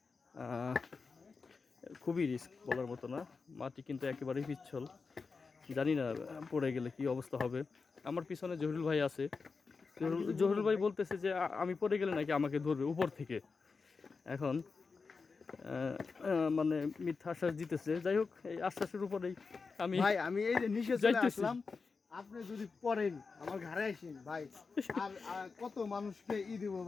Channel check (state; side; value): quieter; right; 4.7 dB